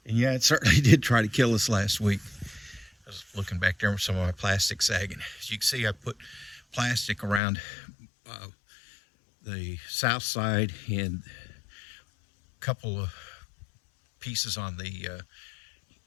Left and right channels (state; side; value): drops out; right; at 7.4 s